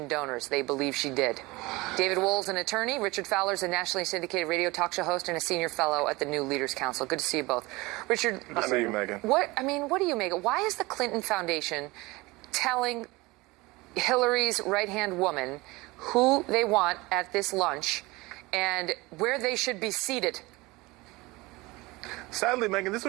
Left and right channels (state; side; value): quieter; left; 22.2 dB